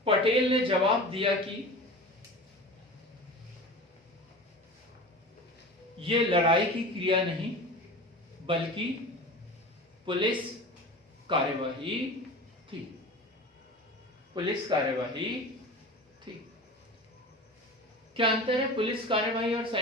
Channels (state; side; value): normal; both; correlation 0.34